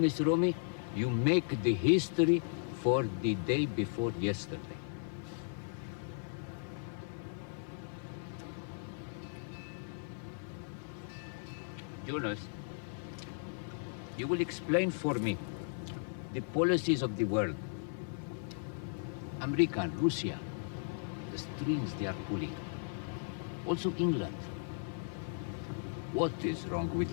Romy, you make the history for the day before yesterday. Jonas, you will explain for me the policies of the world. America and Russia, the strings they are pulling. Also England. What is wrong with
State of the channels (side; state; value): right; silent; 54 dB below the other